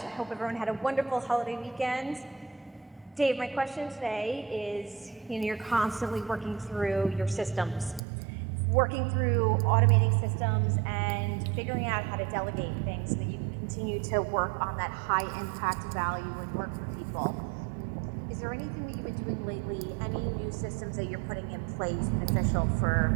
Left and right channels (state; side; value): drops out; left; at 8.0 s